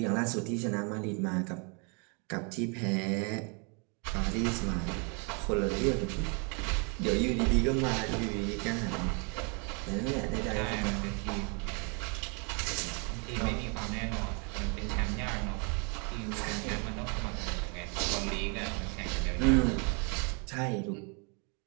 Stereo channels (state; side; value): quieter; left; 35.2 dB